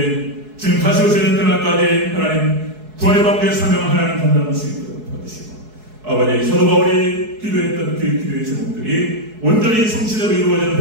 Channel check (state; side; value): late; left; 4.7 ms